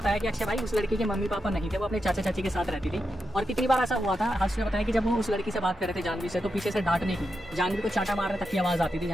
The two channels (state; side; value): normal; both; correlation 0.86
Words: कि अक्षय भाई उस लड़की के मम्मी पापा नहीं थे, वो अपने चाचा चाची के साथ रहती थी। और कितनी बार ऐसा हुआ था, हर्ष ने बताया कि जब वो उस लड़की से बात कर रहे थे जानवी से, तो पीछे से डांटने की, जानवी को चाटा मारने तक की आवाज आती थी